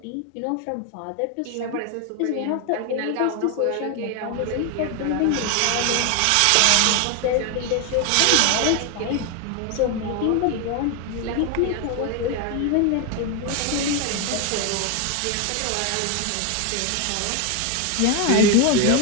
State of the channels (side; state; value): both; different; correlation 0.01